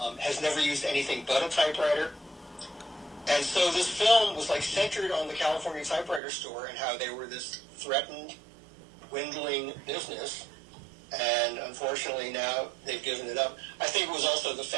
has never used anything but a typewriter. And so this film was like centered on the California Typewriter store and how they were this threatened, dwindling business. And unfortunately now they've given it up. I think it was also the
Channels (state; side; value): drops out; left; at 6.2 s